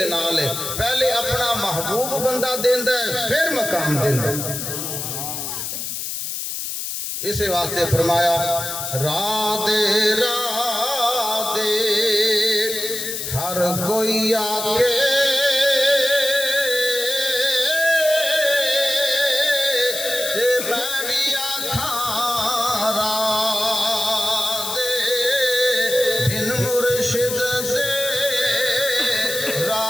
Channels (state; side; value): noise; left; hiss, 5 dB below the sound